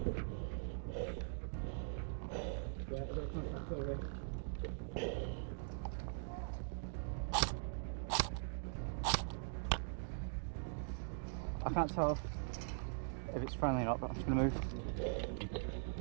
I can't tell if it's friendly or not, but I'm just going to move.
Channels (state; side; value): silent; left; digital silence